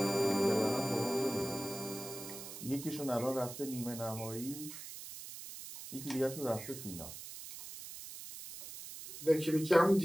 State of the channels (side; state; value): right; noise; hiss, 11 dB below the sound